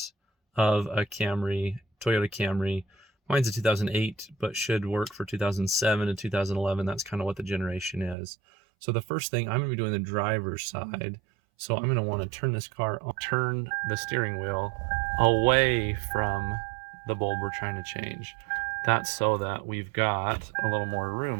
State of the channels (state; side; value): drops out; left; at 8.2 s